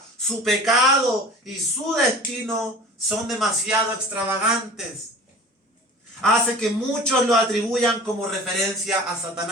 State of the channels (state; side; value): normal; both; correlation 0.40